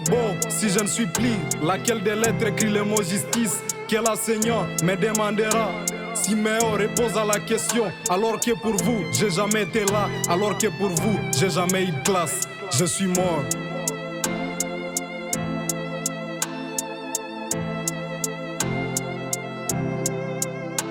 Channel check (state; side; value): identical; both; correlation 1.00